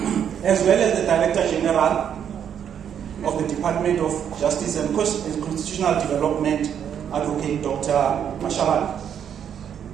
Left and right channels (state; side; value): quieter; left; 8.7 dB